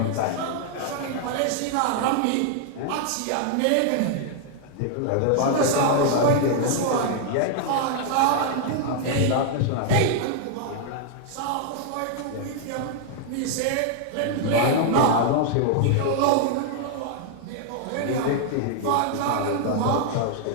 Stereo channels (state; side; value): different; both; correlation 0.00